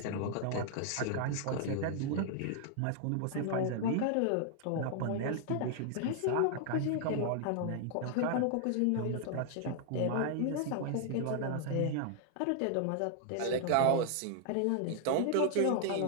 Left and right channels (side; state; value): both; different; correlation 0.00